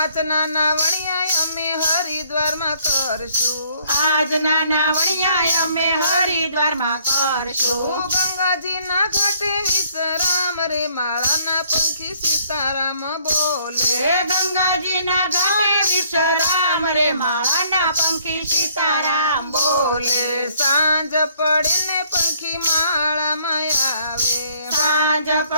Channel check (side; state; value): both; inverted; correlation -0.63